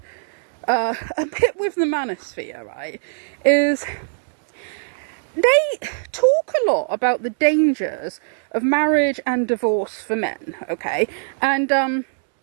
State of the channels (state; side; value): silent; left; digital silence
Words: a bit with the Manosphere, right, is they talk a lot about the dangers of marriage and divorce for men, okay? And,